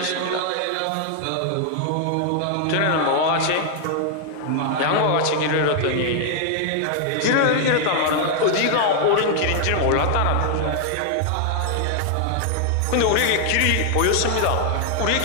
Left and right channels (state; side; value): different; both; correlation 0.00